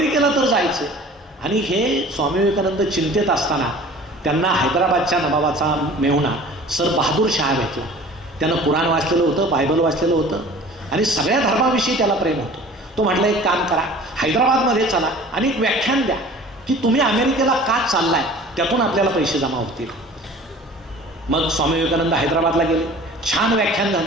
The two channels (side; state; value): both; normal; correlation 0.44